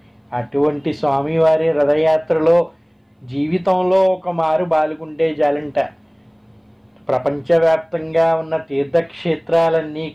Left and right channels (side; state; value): both; identical; correlation 1.00